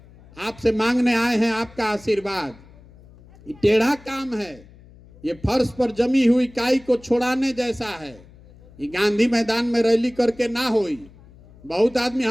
आपसे मांगने आए हैं आपका आशीर्वाद। ये टेढ़ा काम है, ये फर्श पर जमी हुई काई को छोड़ाने जैसा है। ये गांधी मैदान में रैली करके ना होई। बहुत आदमी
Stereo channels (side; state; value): left; noise; hum, 24 dB below the sound